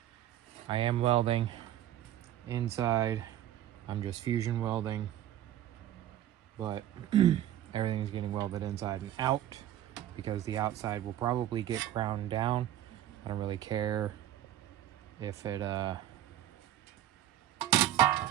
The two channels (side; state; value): left; quieter; 12.1 dB